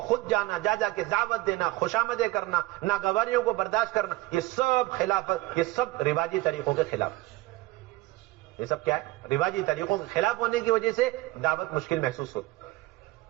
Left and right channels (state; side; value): quieter; left; 19.2 dB